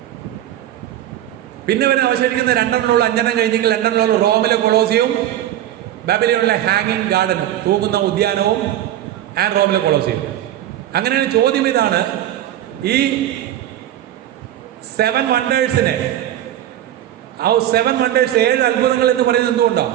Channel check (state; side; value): quieter; left; 12.3 dB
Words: പിന്നെ വരെ അവശേഷിക്കുന്ന 2 5 കഴിഞ്ഞെങ്കിൽ 2 റോമിലെ കൊളോസിയവും ബാബിലോണിലെ ഹാങ്ങിങ് ഗാർഡനും, തൂങ്ങുന്ന ഉദ്യാനവും, ആൻഡ് റോമിലെ കൊളോസിയം. അങ്ങനെയാണ്. ചോദ്യം ഇതാണ്, ഈ 7 വണ്ടേഴ്സിനെ, ആ 7 വണ്ടേഴ്സ് 7 അത്ഭുതങ്ങൾ എന്ന് പറയുന്നത്